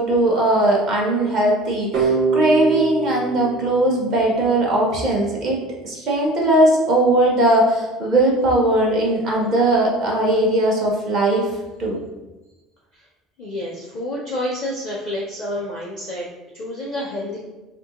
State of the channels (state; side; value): normal; both; correlation 0.41